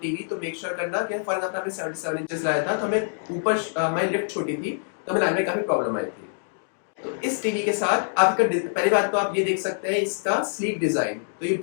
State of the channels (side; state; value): right; silent; digital silence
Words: तो मेक श्योर करना कि फॉर एग्जाम्पल हमने 77 इंचेस लाया था, तो हमें ऊपर हमारी लिफ्ट छोटी थी, तो हमें लाने में काफी प्रॉब्लम आई थी। तो इस टीवी के साथ आपका पहली बात तो आप ये देख सकते हैं इसका स्लीक डिजाइन। तो ये